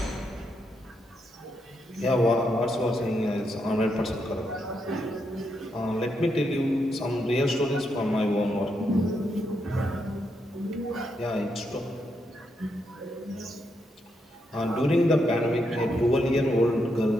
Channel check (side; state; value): both; normal; correlation 0.81